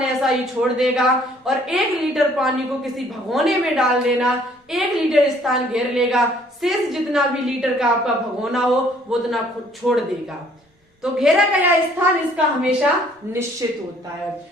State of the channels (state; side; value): normal; both; correlation 0.60